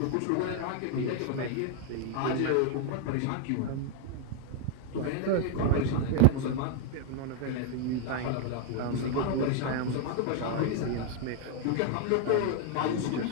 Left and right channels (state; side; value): different; both; correlation 0.00